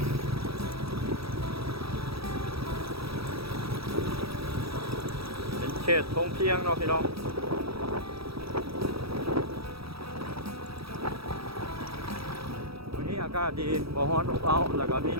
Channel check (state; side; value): late; left; 0.76 ms